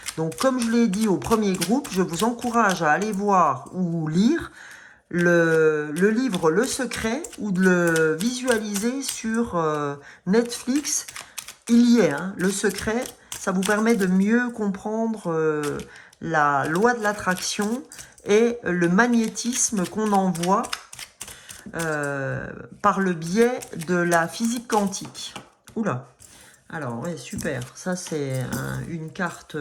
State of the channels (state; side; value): identical; both; correlation 1.00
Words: Donc comme je l'ai dit au premier groupe, je vous encourage à aller voir ou lire le livre Le Secret ou de le visualiser sur Netflix. Il y est, hein, Le Secret. Ça vous permet de mieux comprendre la loi de l'attraction et le magnétisme qu'on envoie par le biais de la physique quantique. Oula. Alors, ouais, super. Ça, c'est une carte,